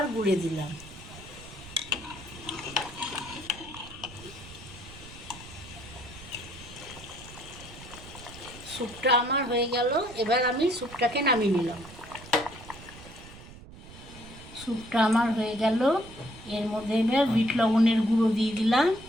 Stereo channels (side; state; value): right; noise; rumble, 17 dB below the sound